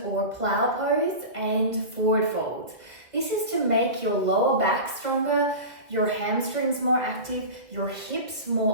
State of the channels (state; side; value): late; left; 1.8 ms